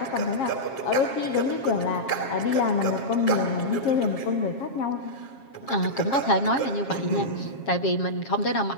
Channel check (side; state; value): right; late; 7.4 ms